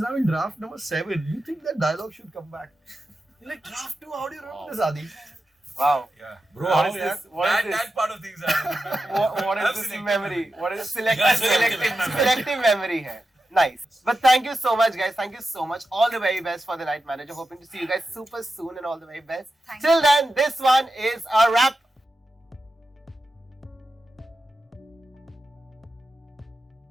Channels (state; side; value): normal; both; correlation 0.91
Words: now in draft number 7. You think that dialogue should come back? You're like, draft 2, how do you remember this, Adi? Wow. Yeah. Bro, What is this? What is this? That part of things are. What is this Absolutely. memory? What is Selective selective memory hai. Nice. But thank you so much, guys. Thank you so much. All the very best for the Night Manager. Hoping to see you guys super soon and all the very best. Thank Till then, this one is a wrap.